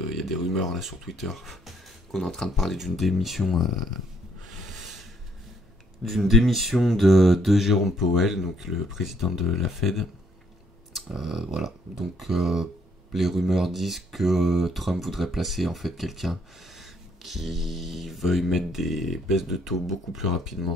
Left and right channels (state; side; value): normal; both; correlation 0.69